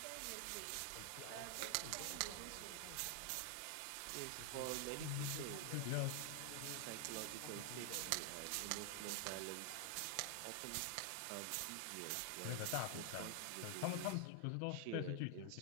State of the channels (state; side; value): different; both; correlation 0.00